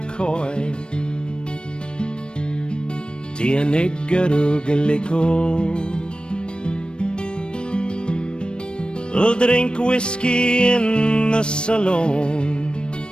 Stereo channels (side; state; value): right; late; 0.054 ms